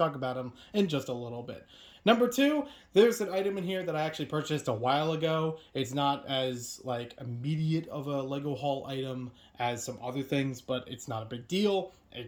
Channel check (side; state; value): both; identical; correlation 1.00